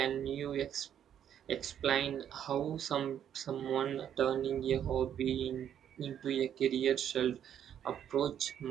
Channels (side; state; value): left; quieter; 9.6 dB